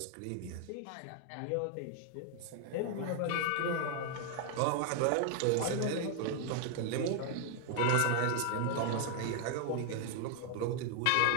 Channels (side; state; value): both; different; correlation 0.00